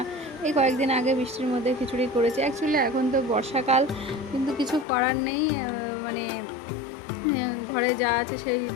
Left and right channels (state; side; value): drops out; right; at 4.9 s